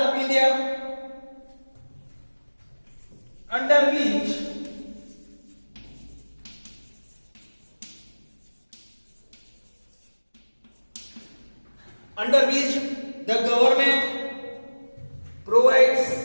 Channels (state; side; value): inverted; both; correlation -1.00